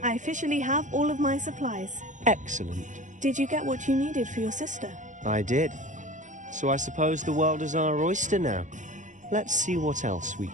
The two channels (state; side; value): late; left; 0.36 ms